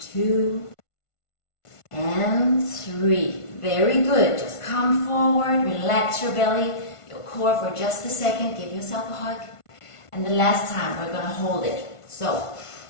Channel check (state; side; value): late; right; 1.5 ms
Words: 2, and 3. Very good. Just come forward, relax your belly, your core for just a second. Give yourself a hug. And the last time, we're going to hold it. So,